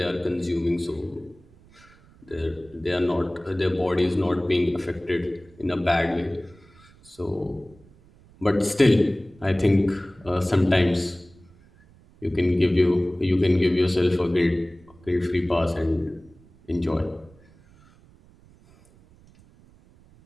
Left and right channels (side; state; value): right; noise; rumble, 27 dB below the sound